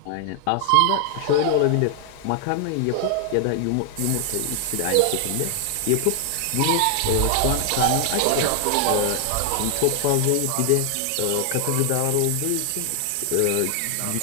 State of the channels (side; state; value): both; different; correlation 0.00